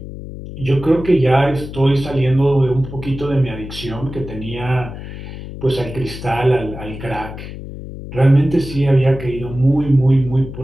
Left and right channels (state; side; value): noise; left; hum, 11 dB below the sound